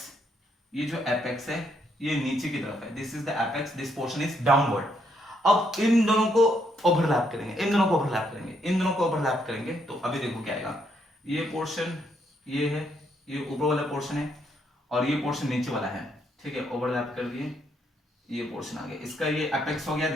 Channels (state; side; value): normal; both; correlation 0.74